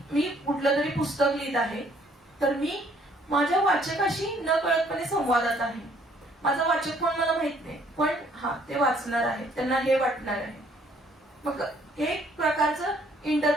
मी कुठलं तरी पुस्तक लिहित आहे, तर मी माझ्या वाचकाशी न कळतपणे संवादात आहे. माझा वाचक कोण मला माहित नाही, पण ते वाचणार आहे, त्यांना हे वाटणार आहे. मग हे एक प्रकारचं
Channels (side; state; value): both; normal; correlation 0.63